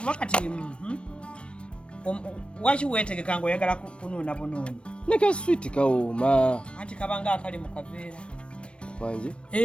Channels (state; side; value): late; right; 0.059 ms